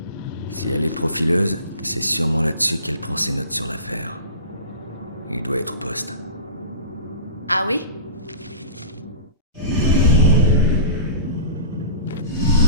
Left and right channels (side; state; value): both; inverted; correlation -0.35